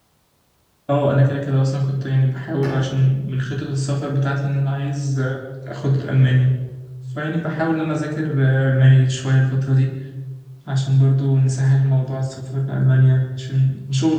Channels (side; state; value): both; identical; correlation 1.00